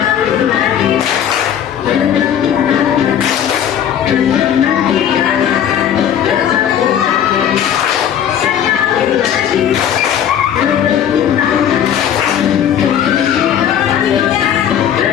lagi bertepuk tangan, menantikan bertepuk tangan, sekali lagi bertepuk tangan.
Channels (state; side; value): quieter; right; 9.5 dB